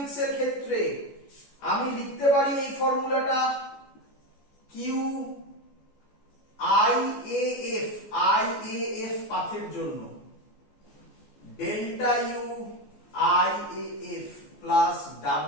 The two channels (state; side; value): late; right; 14 ms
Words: এর ক্ষেত্রে আমি লিখতে পারি এই ফর্মুলাটা, কিউ আইএএফ পাথের জন্য delta U IAF plus